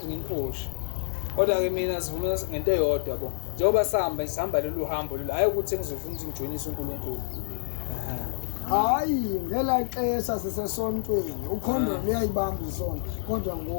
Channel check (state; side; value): silent; right; digital silence